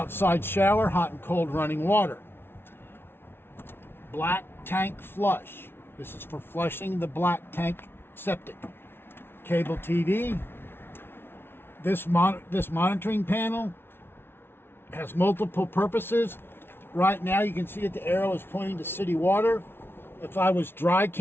shower, hot and cold running water. Black tank flush. This is for flushing the black tank septic. Cable TV. This monitoring panel has multiple purposes. Right now you can see that the arrow is pointing to city water. If I was dry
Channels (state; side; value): late; right; 0.11 ms